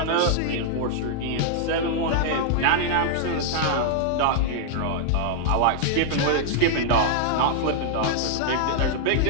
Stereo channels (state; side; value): different; both; correlation -0.01